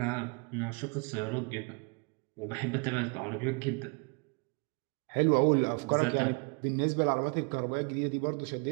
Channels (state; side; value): quieter; left; 34.4 dB